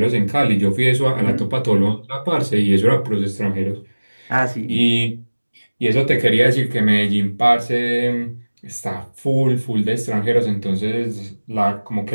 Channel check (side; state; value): both; inverted; correlation -1.00